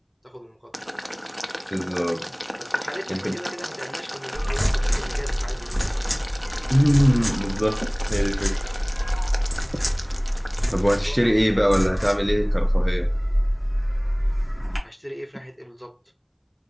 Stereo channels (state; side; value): identical; both; correlation 1.00